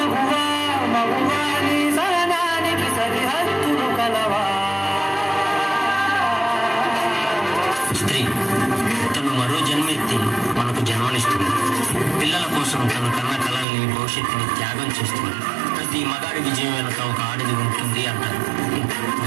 స్త్రీ తను మరో జన్మెత్తి మనకు జన్మనిస్తుంది. పిల్లల కోసం తన కన్న కళల్ని, భవిష్యత్తుని త్యాగం చేస్తుంది. ప్రతి మగాడి విజయం వెనక ఒక ఆడది ఉంటుంది అంటారు.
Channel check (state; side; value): drops out; left; at 13.7 s